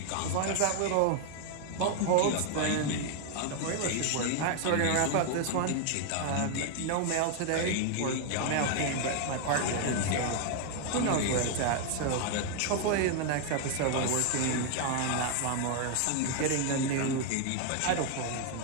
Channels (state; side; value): different; both; correlation 0.00